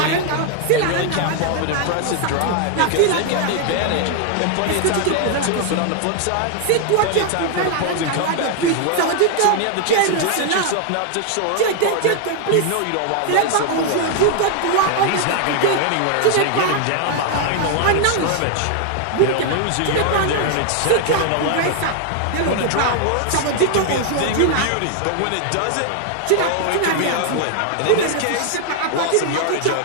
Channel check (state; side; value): different; both; correlation 0.00